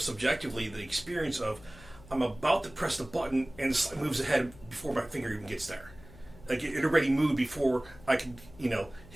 the experience of, I'm about to press the button and the slide moves ahead before my finger even gets there. Like it already moved before I could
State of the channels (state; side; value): noise; left; hum, 20 dB below the sound